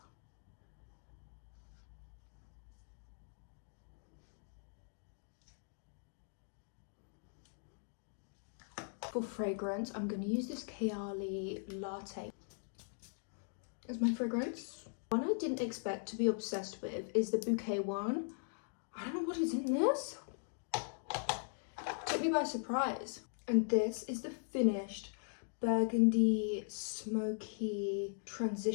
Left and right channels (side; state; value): right; silent; digital silence